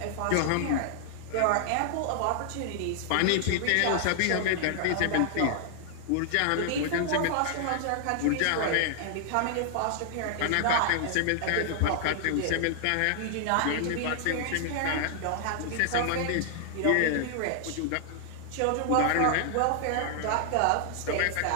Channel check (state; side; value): different; both; correlation 0.00